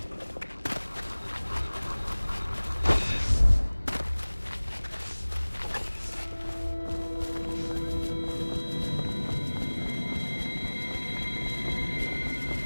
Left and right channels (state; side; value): inverted; both; correlation -1.00